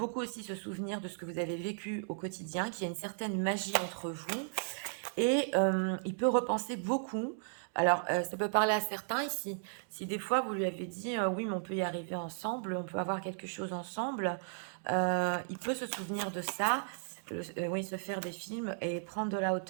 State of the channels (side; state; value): left; silent; digital silence